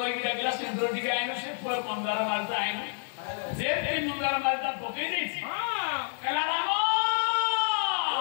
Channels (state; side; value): silent; right; digital silence